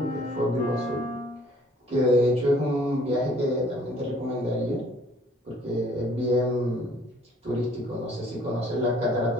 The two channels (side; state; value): both; normal; correlation 0.58